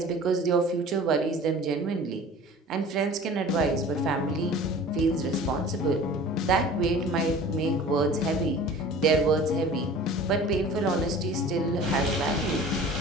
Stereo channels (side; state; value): both; normal; correlation 0.42